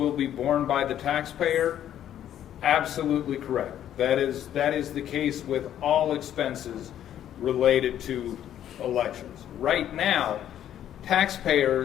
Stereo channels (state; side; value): quieter; right; 10.9 dB